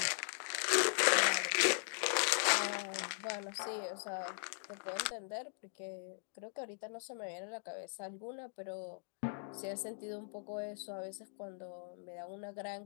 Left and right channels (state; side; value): silent; right; digital silence